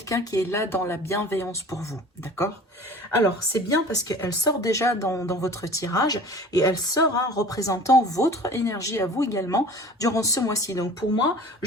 qui est là dans la bienveillance pour vous, d'accord? Alors, c'est bien parce qu'elle sort déjà dans votre tirage et elle sort représentant votre énergie à vous également durant ce mois-ci. Donc pour moi,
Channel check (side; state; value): both; normal; correlation 0.43